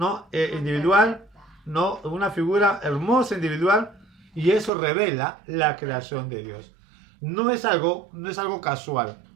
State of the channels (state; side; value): drops out; left; at 4.7 s